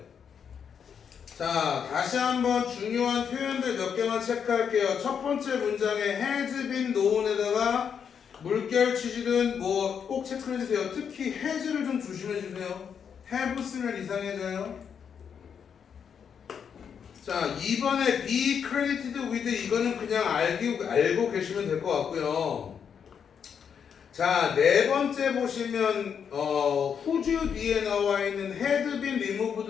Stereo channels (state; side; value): quieter; right; 7.3 dB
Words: 자, 다시 한번 중요한 표현들 몇 개만 체크할게요. 첫 번째 문장에 has been known에다가 물결 치시든 뭐 꼭 체크해주세요. 특히 has를 좀 조심해주세요. have 쓰면 이상해져요. 자, 2번에 be credited with, 이거는 그냥 알고 계시면 될 것 같고요. 자, 네 번째 보시면 whose 뒤에 나와 있는 had been